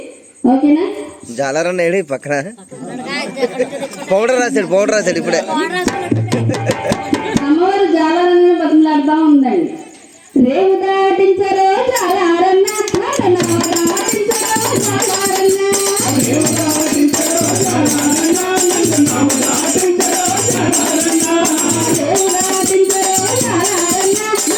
ఓకేనా? జాలారన్న ఏడి పక్కన పౌడర్ రాశాడు ఇప్పుడే. అమ్మవారు జాలారన్న బతిమలాడుతూ ఉందండి. రేవు దాటించరో జాలారన్న,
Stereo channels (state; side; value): identical; both; correlation 1.00